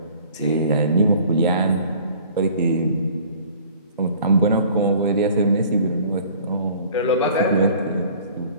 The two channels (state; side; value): inverted; both; correlation -0.51